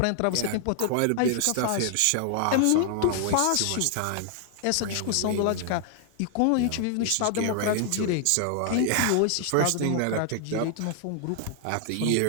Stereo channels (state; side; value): different; both; correlation 0.00